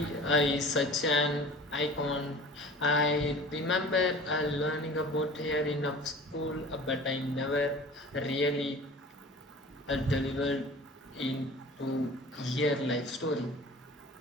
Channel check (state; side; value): normal; both; correlation 0.42